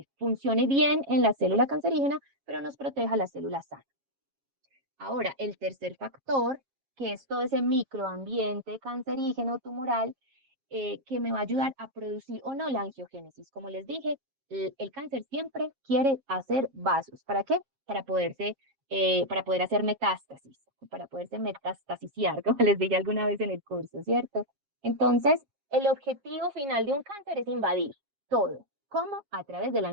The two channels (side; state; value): left; late; 7.3 ms